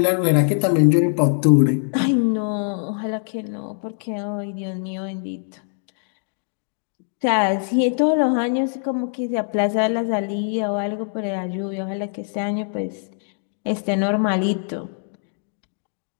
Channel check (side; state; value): right; silent; digital silence